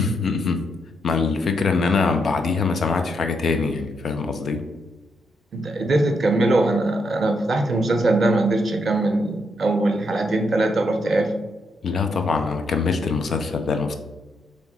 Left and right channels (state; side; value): normal; both; correlation 0.78